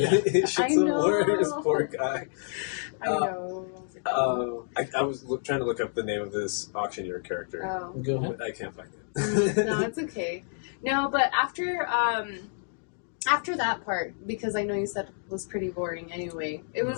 His shit's I the know. worst, poor guy. I know. I was trying to look up the name of this auctioneer character. Oh. Go ahead. I can't find it. No, it's okay. No, but after that part, because I know you said it was pretty boring anyway, it was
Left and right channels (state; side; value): silent; right; digital silence